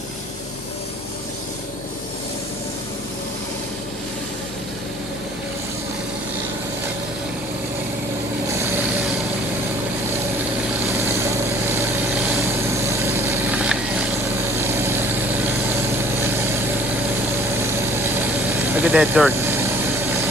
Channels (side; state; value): both; normal; correlation 0.53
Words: Look at that dirt.